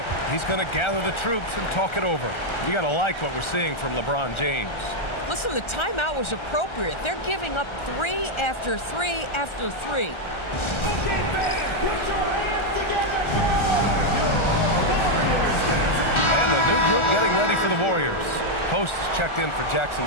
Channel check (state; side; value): late; right; 1.3 ms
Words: He's going to gather the troops and talk it over. You got to like what we're seeing from LeBron James. Listen, the timeout was appropriate. They're giving up three after three after three. And the new group getting ready for the Warriors. Post is checked in for Jackson